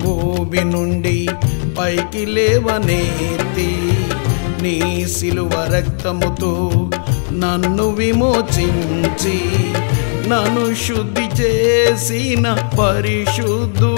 ఊబి నుండి పైకి లేవనెత్తి నీ సిలువ రక్తముతో నన్ను విమోచించి నన్ను శుద్ధి చేసిన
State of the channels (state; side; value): silent; right; 68 dB below the other